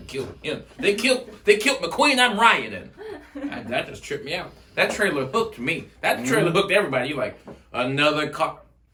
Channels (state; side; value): identical; both; correlation 1.00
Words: killed him. They killed McQueen. I'm rioting. That just tripped me out. That trailer hooked me. That trailer hooked everybody. You like, another car.